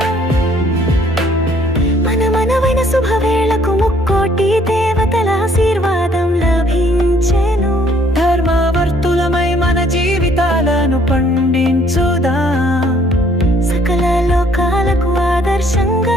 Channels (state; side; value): normal; both; correlation 0.63